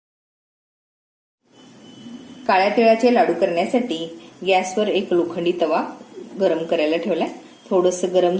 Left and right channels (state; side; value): identical; both; correlation 1.00